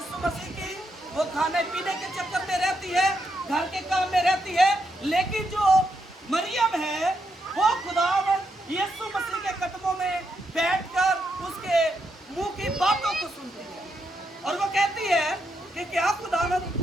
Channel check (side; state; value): both; normal; correlation 0.81